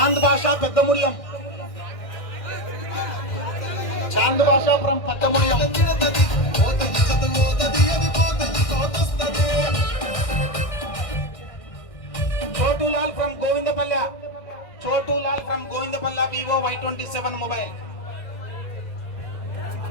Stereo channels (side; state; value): right; late; 1.6 ms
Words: భాషా Peddamudiyam. Chand Basha from Peddamudiyam. Chotulal from Govindapalle. Chotulal from Govindapalle. Vivo Y27 mobile.